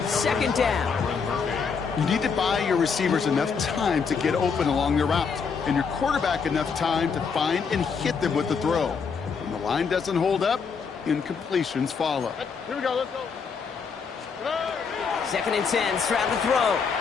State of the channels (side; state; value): right; quieter; 5.7 dB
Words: 2nd down. You need to buy your receivers enough time to get open along their route, and your quarterback enough time to find and hit them with the throw. When the line doesn't hold up, incompletions follow. Here we go, let's go. 2nd and 10, Stroud to throw.